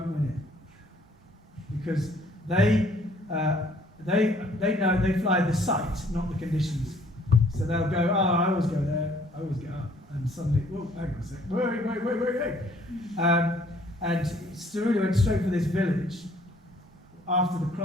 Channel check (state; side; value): normal; both; correlation 0.60